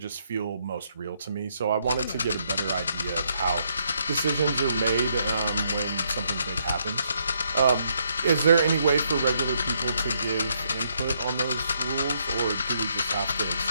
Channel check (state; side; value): inverted; both; correlation -0.73